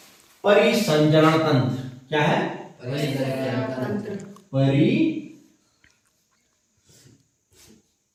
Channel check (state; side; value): identical; both; correlation 1.00